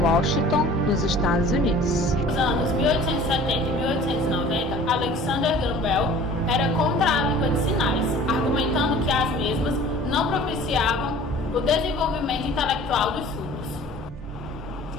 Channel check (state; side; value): normal; both; correlation 0.46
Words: Washington, nos Estados Unidos. Nos anos 1870 e 1890, Alexander Graham Bell era contra a língua de sinais, argumentando que as mesmas não propiciavam o desenvolvimento intelectual dos surdos.